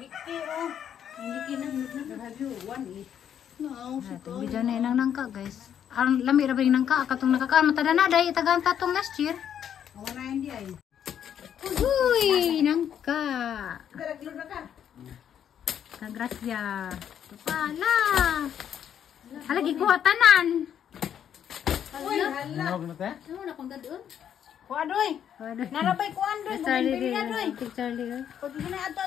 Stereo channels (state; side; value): quieter; right; 9.2 dB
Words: Video na inang nangka guys. Ang lami ra ba yung nangka katong nakakaan matada na dai tagang tatong last year. Wala hindi ay. Uy, nangka. Daraglo na ka. Kagrasya. Pala. Halagi ko tanan. Uy, hala. Ano na kung dadon? Kuadoy. Narabay kuandoy, Charlie bumili na doy. Charlie. Pag na